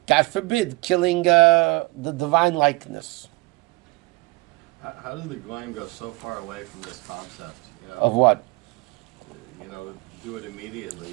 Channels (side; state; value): left; quieter; 24.9 dB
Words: God forbid, killing the divine likeness. How did the Goyim go so far away from this concept? Of what? Do it